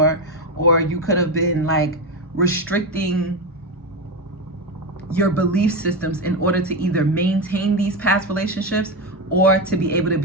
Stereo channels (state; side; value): normal; both; correlation 0.13